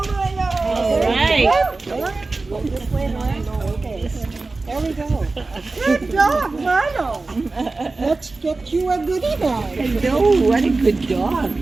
right. This way around. Okay. There we go. Good dog, Milo. Let's get you a goodie bag. Hello, what a good dog.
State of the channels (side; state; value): left; quieter; 3.5 dB